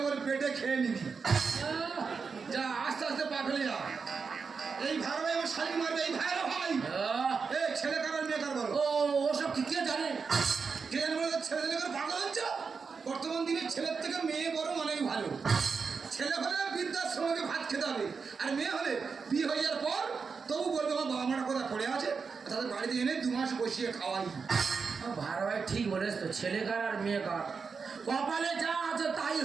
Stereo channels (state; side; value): quieter; left; 5.3 dB